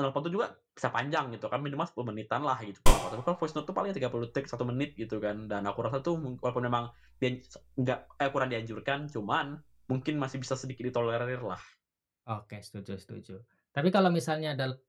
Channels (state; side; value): identical; both; correlation 1.00